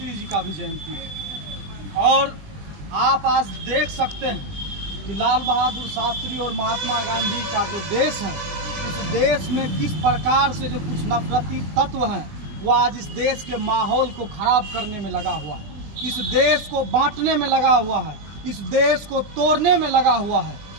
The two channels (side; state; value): left; late; 20 ms